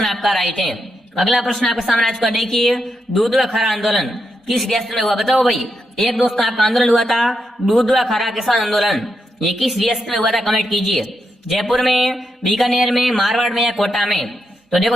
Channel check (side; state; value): both; normal; correlation 0.83